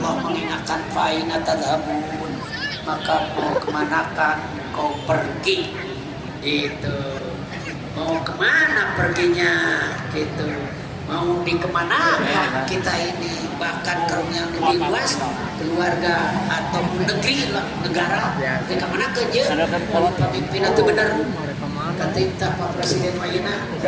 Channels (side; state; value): both; identical; correlation 1.00